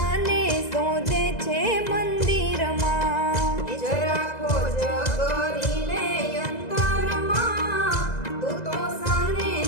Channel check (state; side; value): late; right; 2.0 ms